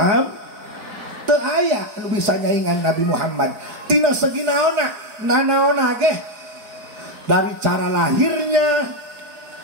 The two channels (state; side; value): late; left; 4.8 ms